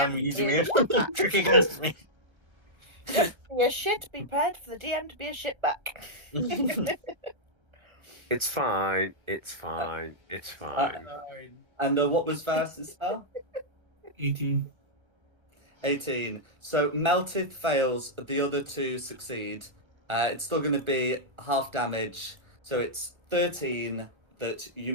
DM using to me be a shit trick against me. back. Be a shit. Be prepared for the DM to be a shit back. It's fine. It's fine. It's fine. And what was Varus's spell? 18. 18. So Meltith fails, the other two succeed. It's still going to be half damage, so it's 13 that you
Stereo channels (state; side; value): late; left; 1.3 ms